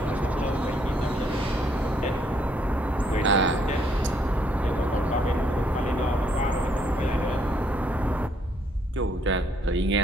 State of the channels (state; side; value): normal; both; correlation 0.70